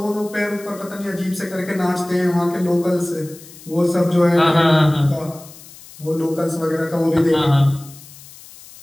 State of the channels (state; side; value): noise; left; hiss, 20 dB below the sound